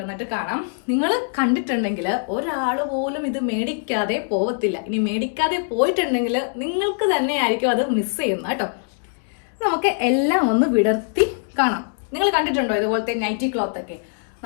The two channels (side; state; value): right; silent; 64 dB below the other